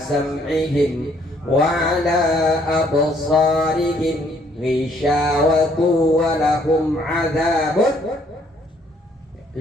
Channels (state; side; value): normal; both; correlation 0.65